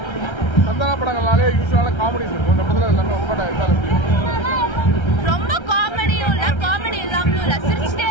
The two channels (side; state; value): right; late; 1.3 ms